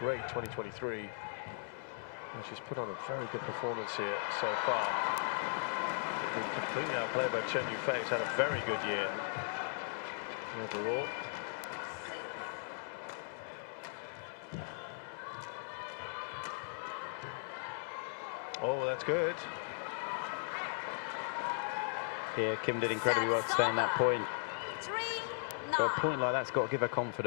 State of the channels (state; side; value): silent; right; 53 dB below the other